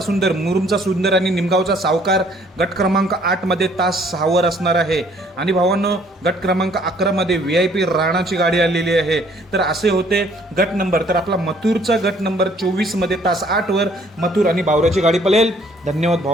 सुंदर आणि निमगावचा सावकार गट क्रमांक 8 मध्ये तास 6 वर असणार आहे. आणि भावांनो गट क्रमांक 11 मध्ये VIP राणाची गाडी आलेली आहे. तर असे होते गट नंबर. तर आपला मथुरचा गट नंबर 24 मध्ये तास 8 वर मथुर आणि बावऱ्याची गाडी पळेल. धन्यवाद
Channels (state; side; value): normal; both; correlation 0.61